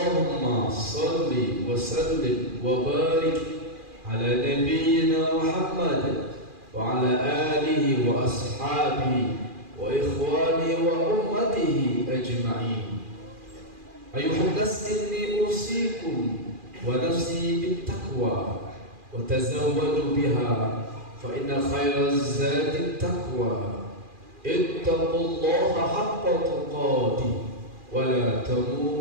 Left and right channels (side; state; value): left; late; 2.4 ms